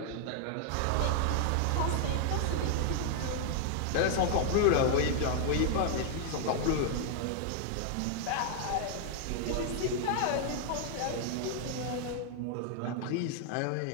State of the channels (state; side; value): different; both; correlation 0.00